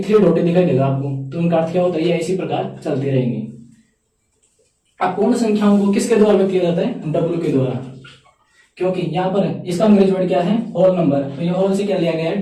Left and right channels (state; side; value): identical; both; correlation 1.00